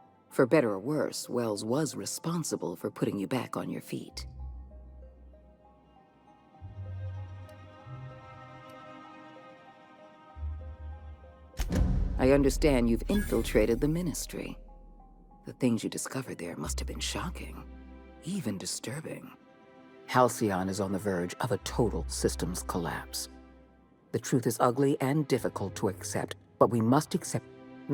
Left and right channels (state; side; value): identical; both; correlation 1.00